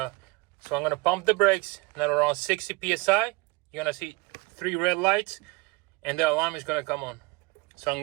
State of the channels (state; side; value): quieter; left; 25.9 dB